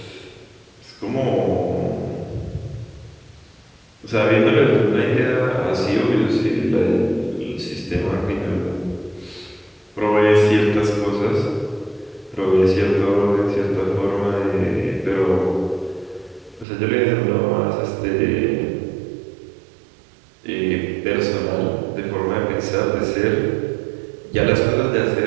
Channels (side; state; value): left; drops out; at 16.7 s